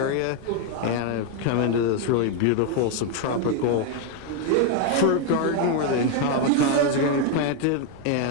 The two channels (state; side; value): different; both; correlation 0.01